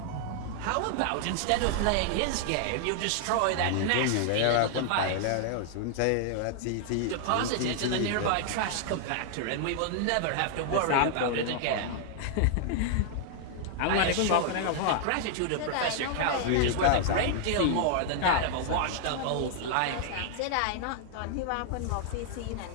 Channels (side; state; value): both; different; correlation -0.01